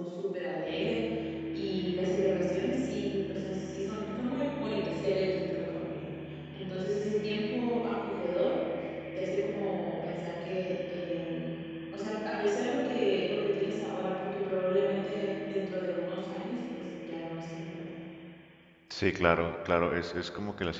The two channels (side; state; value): both; identical; correlation 1.00